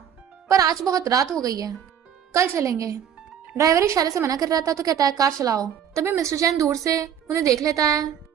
पर आज बहुत रात हो गई है, कल चलेंगे। ड्राइवर इशारे से मना कर रहा था तो कहता है कार चलाओ। तभी मिस्टर जैन दूर से उन्हें देख लेता है,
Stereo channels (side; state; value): left; quieter; 8.8 dB